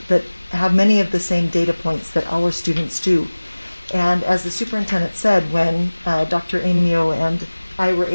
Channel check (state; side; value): inverted; both; correlation -1.00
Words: have many of the same data points that our students do. And as the superintendent said, when Dr. Amio and I were